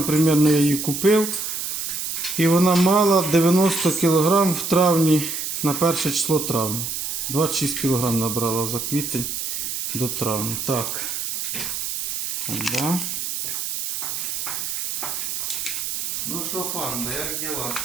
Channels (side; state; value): right; noise; hiss, 3 dB below the sound